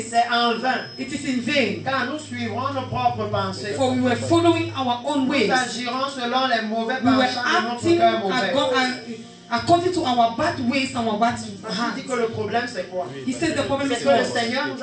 c'est en vain, it is in vain, car nous suivrons nos propres pensées. for we were following our own ways. Nous agirons selon les mauvais We were penchants de notre acting cœur mauvais. according to our bad ways and our bad Il dit hearts. que le problème c'est quoi? He says the problem C'est is que le what? Seigneur nous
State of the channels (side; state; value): both; identical; correlation 1.00